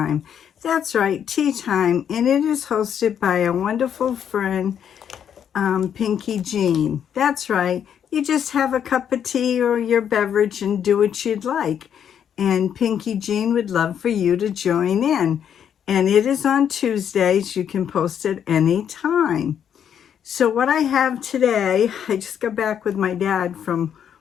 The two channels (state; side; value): quieter; right; 8.7 dB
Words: That's right, Tea Time, and it is hosted by a wonderful friend, Pinky Jean. That's right, you just have a cup of tea or your beverage and do what you'd like. And Pinky Jean would love for you to join in. And it is on Tuesdays. You can post at any time. So what I have today, I just got back with my dad from